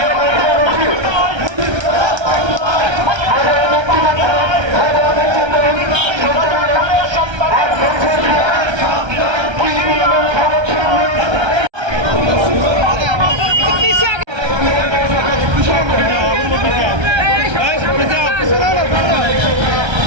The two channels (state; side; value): late; left; 1.3 ms